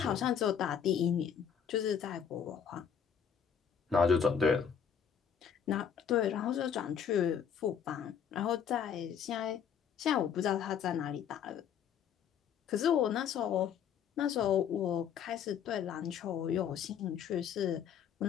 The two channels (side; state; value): right; quieter; 7.9 dB